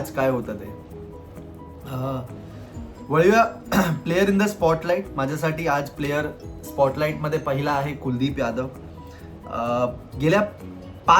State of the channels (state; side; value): identical; both; correlation 1.00